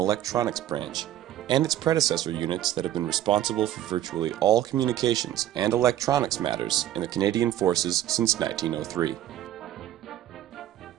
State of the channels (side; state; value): left; quieter; 12.6 dB